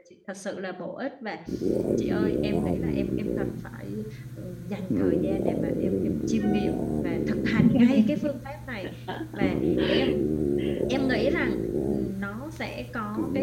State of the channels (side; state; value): both; identical; correlation 1.00